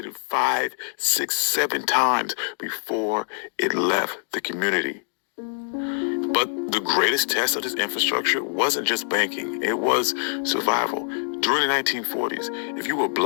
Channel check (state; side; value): silent; right; digital silence